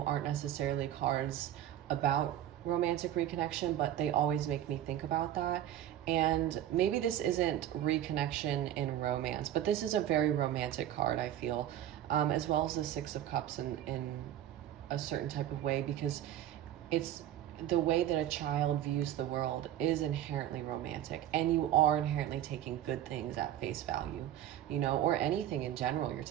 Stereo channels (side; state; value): left; quieter; 11.9 dB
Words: aren't necessarily cards about romantic reconnection, but they always make me think about that. And maybe this isn't reconnection in romance, but this is a very romantic card, I feel, as well as the Six of Cups in a certain type of way, because it's the way that a child views the world is inherently romantic, and you are inherently taking good things at face value, you know, or anything in general, you're